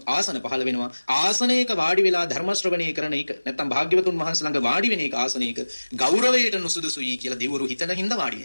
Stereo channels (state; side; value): inverted; both; correlation -1.00